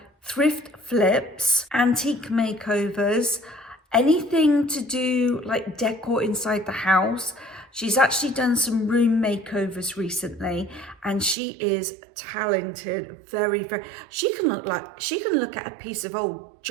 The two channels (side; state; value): left; drops out; at 11.4 s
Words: thrift flips, antique makeovers, anything to do like decor inside the house. She's actually done some room makeovers recently, and she is talented, very. She can look at a piece of old